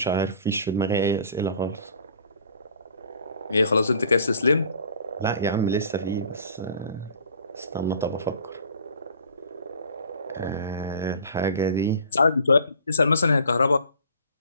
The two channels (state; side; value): inverted; both; correlation -0.48